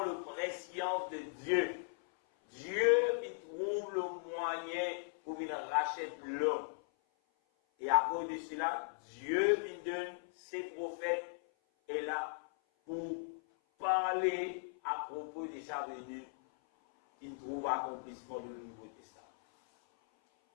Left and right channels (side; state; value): right; silent; 52 dB below the other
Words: le prescience de Dieu. Dieu, il trouve le moyen pour qu'il rachète l'homme. Et à cause de cela, Dieu, il donne ses prophètes et là pour parler à propos de sa venue, il trouve accomplissement du Nouveau Testament.